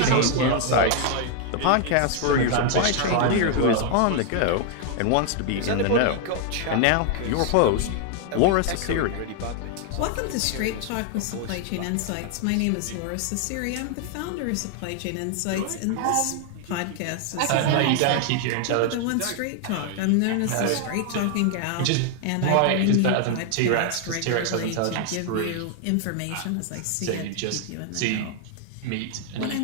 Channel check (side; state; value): both; different; correlation 0.00